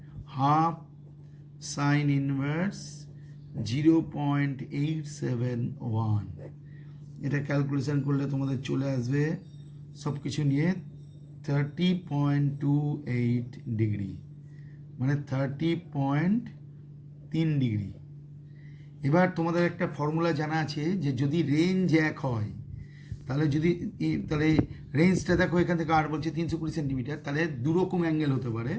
হাফ সাইন ইনভার্স 0.871। এটা ক্যালকুলেশন করলে তোমাদের চলে আসবে সব কিছু নিয়ে 30.28 ডিগ্রি, মানে 30.3 ডিগ্রি। এবার তোমাদের একটা ফর্মুলা জানা আছে যে যদি রেঞ্জ এক হয়, তাহলে তাহলে রেঞ্জটা দেখো এখান থেকে আর বলছে 320 সেন্টিমিটার, তাহলে দুরকম অ্যাঙ্গেল হতে পারে।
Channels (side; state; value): both; identical; correlation 1.00